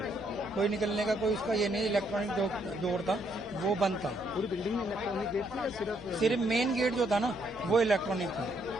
कोई निकलने का कोई उसका ये नहीं। इलेक्ट्रॉनिक डोर था, वो बंद था। पूरी बिल्डिंग में इलेक्ट्रॉनिक गेट थी या सिर्फ मेन गेट जो था ना वो इलेक्ट्रॉनिक था,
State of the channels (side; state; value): left; noise; hum, 19 dB below the sound